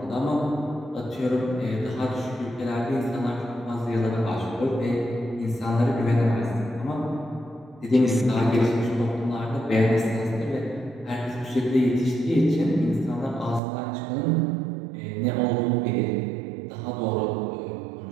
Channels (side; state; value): left; drops out; at 13.6 s